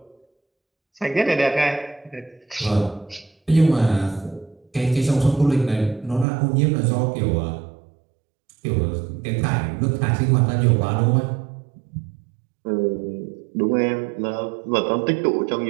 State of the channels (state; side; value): drops out; left; at 6.2 s